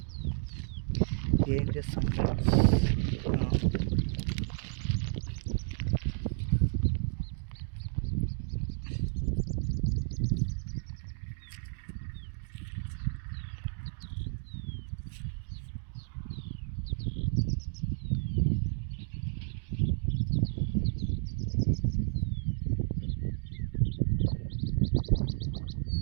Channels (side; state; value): left; silent; digital silence